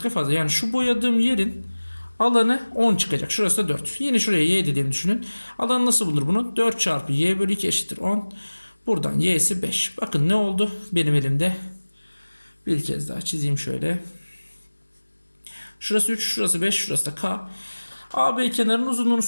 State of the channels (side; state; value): both; inverted; correlation -1.00